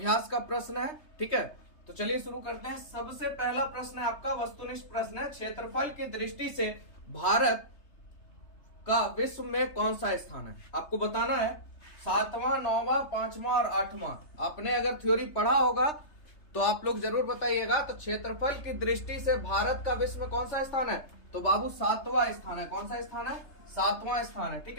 का प्रश्न है। ठीक है, तो चलिए शुरू करते हैं। सबसे पहला प्रश्न है आपका वस्तुनिष्ठ प्रश्न है। क्षेत्रफल की दृष्टि से भारत का विश्व में कौन सा स्थान है? आपको बताना है 7वां, 9वां, 5वां और 8वां। आपने अगर थ्योरी पढ़ा होगा तो आप लोग जरूर बताइएगा। तो क्षेत्रफल की दृष्टि से भारत का विश्व में कौन सा स्थान है? तो बाबू 7वां स्थान है। कौन सा स्थान है? 7वां स्थान है।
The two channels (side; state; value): right; late; 3.3 ms